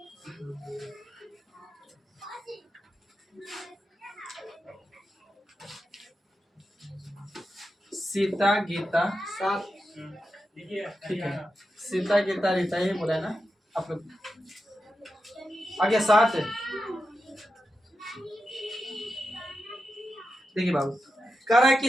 सीता गीता, ठीक है, सीता गीता रीता ये बोला है ना आप लोग। आगे 7 है, देखिए बाबू कह रहा है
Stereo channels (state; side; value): normal; both; correlation 0.89